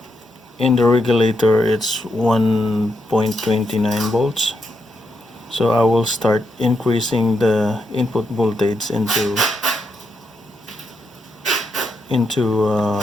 in the regulator it's 1.29 volts. So I will start increasing the input voltage into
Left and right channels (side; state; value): both; normal; correlation 0.82